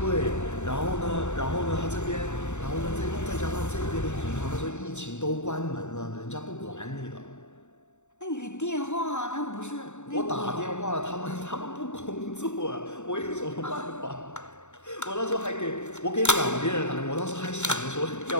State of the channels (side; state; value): right; late; 0.83 ms